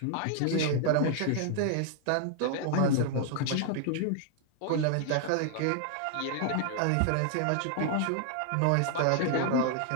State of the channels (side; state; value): both; different; correlation 0.00